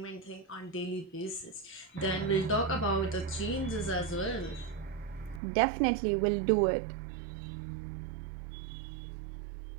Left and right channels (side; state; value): left; drops out; at 5.4 s